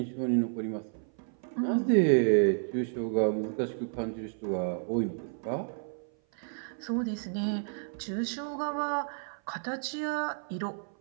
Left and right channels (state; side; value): silent; left; 55 dB below the other